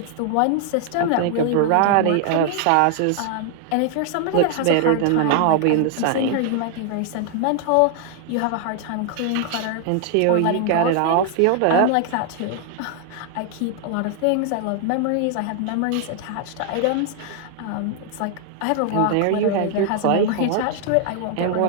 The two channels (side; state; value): both; different; correlation 0.00